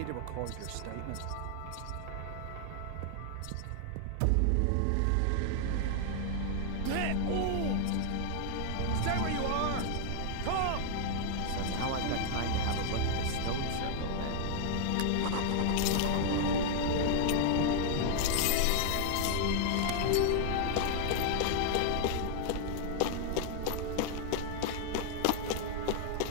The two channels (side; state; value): both; different; correlation 0.00